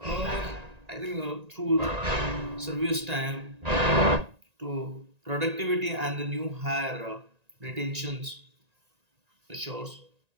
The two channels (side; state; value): left; late; 1.9 ms